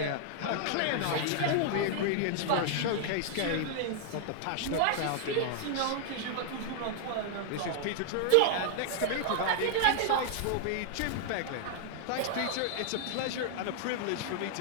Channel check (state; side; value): different; both; correlation -0.01